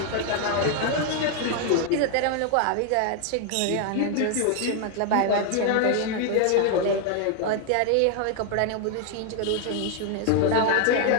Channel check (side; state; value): both; different; correlation 0.01